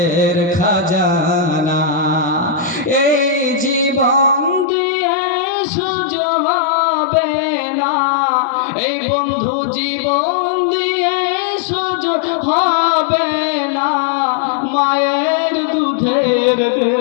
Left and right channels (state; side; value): drops out; right; at 4.7 s